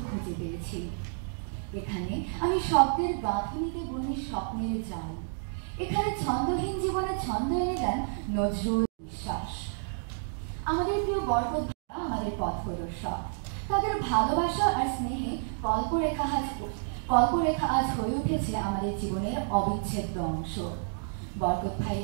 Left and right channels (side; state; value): left; silent; digital silence